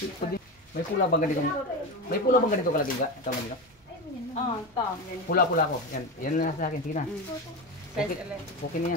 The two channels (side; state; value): both; normal; correlation 0.21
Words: May pula bang ganito? May pula bang ganito kalaki ka? Tama nila? Oo, ito. Pula-pula ko. Yan, yan na sa akin. Sige na. Okay, okay na